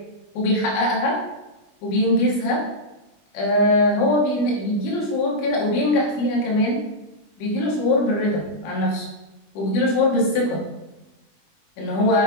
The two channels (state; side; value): late; right; 20 ms